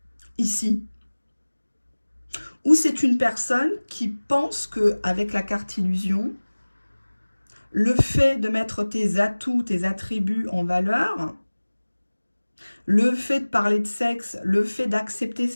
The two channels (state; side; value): inverted; both; correlation -1.00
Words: ici. Ou c'est une personne qui pense qu'avec la carte illusion, le fait de mettre tes atouts, tes attributs en valeur, le fait de parler de sexe, le fait d'accepter